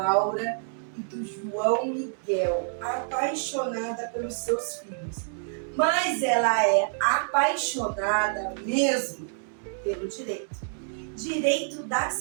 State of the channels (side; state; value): left; silent; digital silence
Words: e do João Miguel, apaixonada pelos seus filhos. Mas ela é apaixonada mesmo pelo direito da